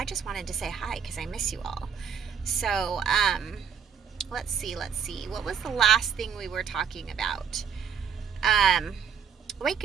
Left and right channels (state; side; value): quieter; left; 7.1 dB